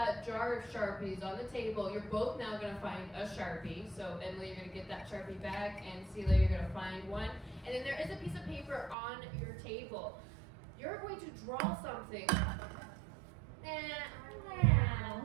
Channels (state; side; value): drops out; left; at 9.0 s